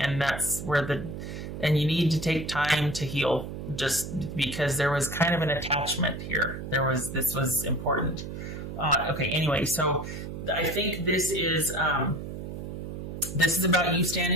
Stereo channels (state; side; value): noise; right; hum, 8 dB below the sound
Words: that's where and you need to take time to heal, just because there was kind of an attachment here. This was important. Okay, anyway, so I think this is about you